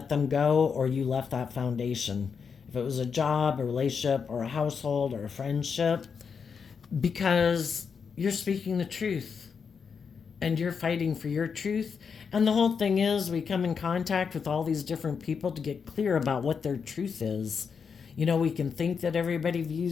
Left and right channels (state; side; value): quieter; right; 6.1 dB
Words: them go or you left that foundation. If it was a job, a relationship, or a household, or a friendship, because you're speaking the truth and you're fighting for your truth. And the whole thing is, we come in contact with all these different people to get clear about what their truth is. We can think that everybody